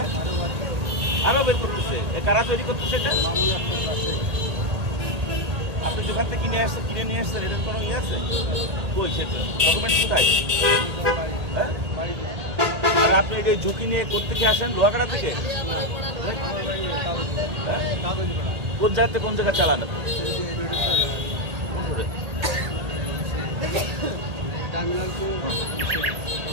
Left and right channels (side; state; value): left; late; 1.8 ms